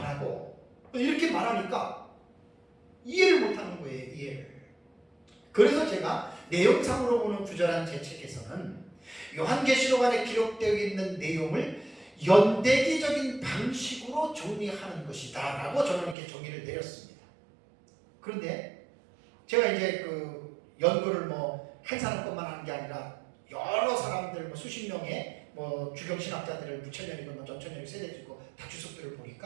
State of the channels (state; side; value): drops out; left; at 16.2 s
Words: 하고 이렇게 말하니까 이해를 못하는 거예요. 이해를. 그래서 제가 내용상으로 보는 구절한 제 책에서는 요한계시록 안에 기록되어 있는 내용을 연대기적인 방식으로 정리하는 것이다 라고 저는 이렇게 정의를 내렸습니다. 그런데 제가 이제 그 연구를 한 사람 것만 하는 게 아니라 여러 사람들 수십 명의 주경신학자들을 무천년이건 전천년이 세대지고 다 주석들을